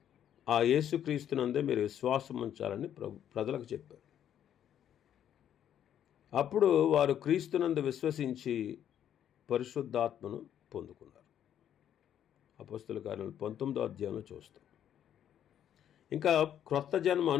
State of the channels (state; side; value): quieter; right; 10.0 dB